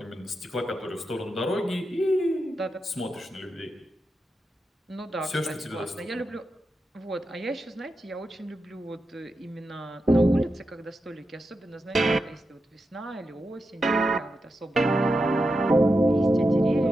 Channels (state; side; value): normal; both; correlation 0.88